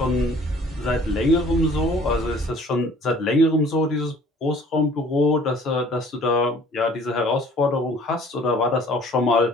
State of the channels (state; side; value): normal; both; correlation 0.53